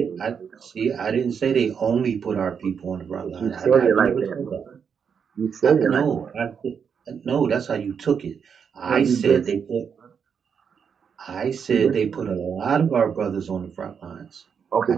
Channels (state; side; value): quieter; left; 6.9 dB